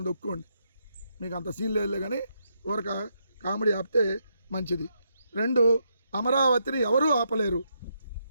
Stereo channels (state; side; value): inverted; both; correlation -0.79